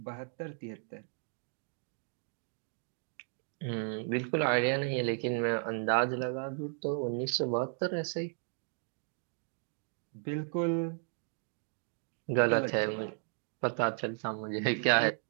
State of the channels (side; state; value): left; silent; 55 dB below the other